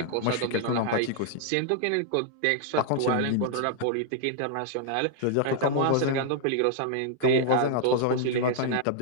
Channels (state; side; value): different; both; correlation -0.01